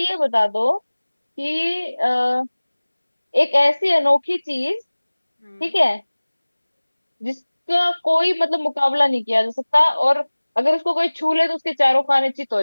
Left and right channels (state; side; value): inverted; both; correlation -1.00